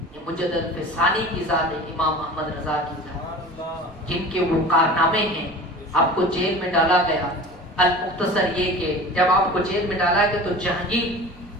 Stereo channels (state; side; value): normal; both; correlation 0.38